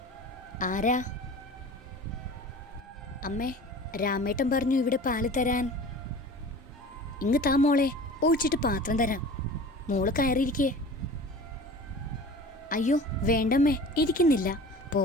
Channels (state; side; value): normal; both; correlation 0.40